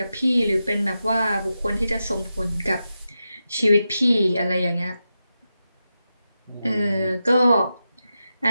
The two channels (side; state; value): both; inverted; correlation -0.90